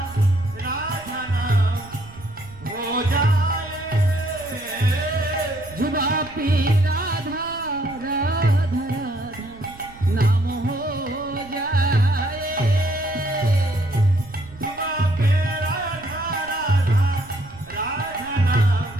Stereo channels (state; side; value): noise; right; rumble, 20 dB below the sound